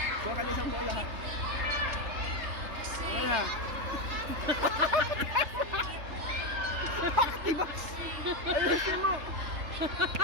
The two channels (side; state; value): left; late; 3.3 ms